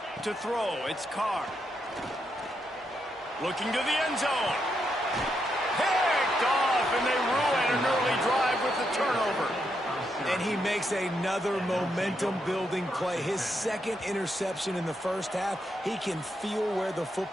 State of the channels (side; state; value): both; normal; correlation 0.81